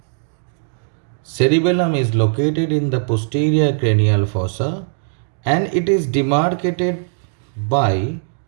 Cerebellum is located in the posterior cranial fossa and it is demarcated by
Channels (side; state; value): left; silent; digital silence